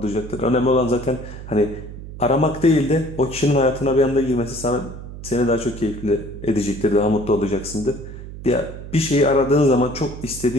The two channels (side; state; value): right; noise; hum, 12 dB below the sound